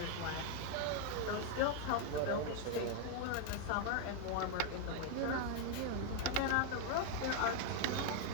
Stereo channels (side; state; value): both; different; correlation 0.00